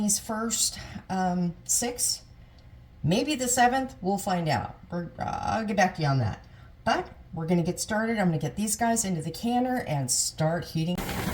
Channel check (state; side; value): identical; both; correlation 1.00